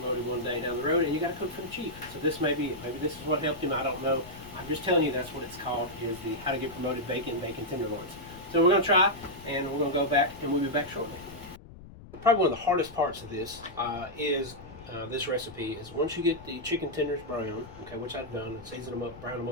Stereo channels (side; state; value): left; noise; rumble, 17 dB below the sound